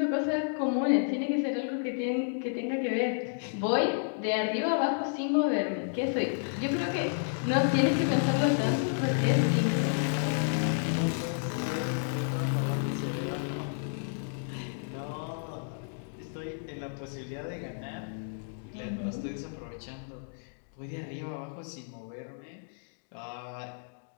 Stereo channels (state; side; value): silent; right; digital silence